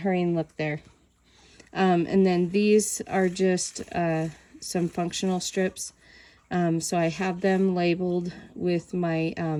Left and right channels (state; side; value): identical; both; correlation 1.00